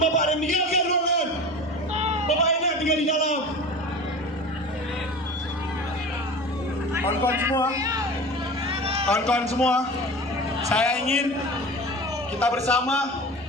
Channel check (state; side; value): normal; both; correlation 0.34